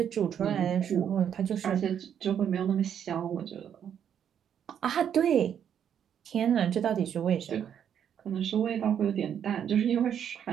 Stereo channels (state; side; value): quieter; left; 8.9 dB